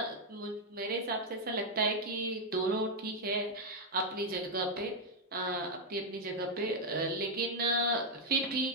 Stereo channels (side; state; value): both; normal; correlation -0.01